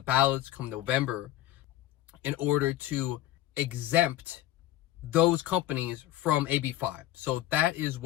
ballots come November in order to exempt those companies from AB5. So that is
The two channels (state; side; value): quieter; right; 14.2 dB